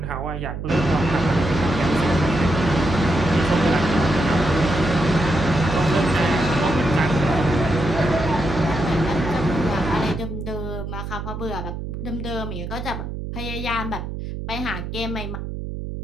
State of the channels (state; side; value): noise; right; hum, 6 dB below the sound